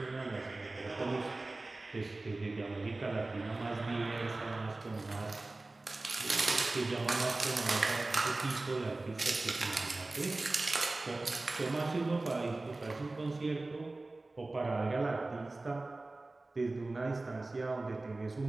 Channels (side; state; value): left; quieter; 3.1 dB